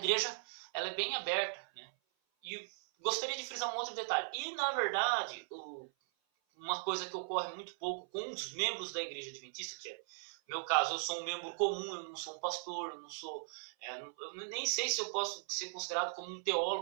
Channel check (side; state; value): left; silent; 52 dB below the other